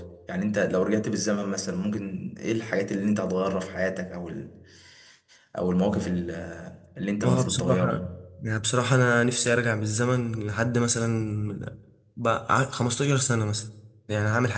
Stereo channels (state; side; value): identical; both; correlation 1.00